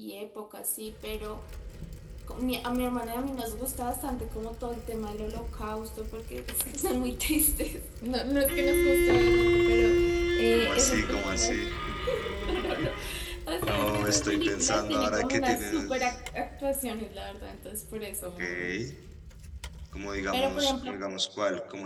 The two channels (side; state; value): both; identical; correlation 1.00